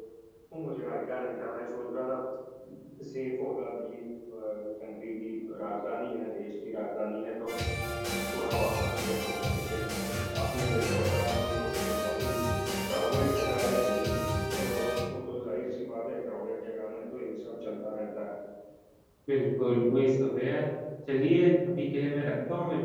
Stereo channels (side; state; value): both; identical; correlation 1.00